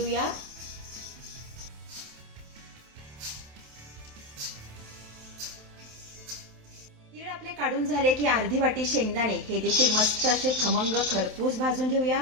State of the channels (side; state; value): left; late; 27 ms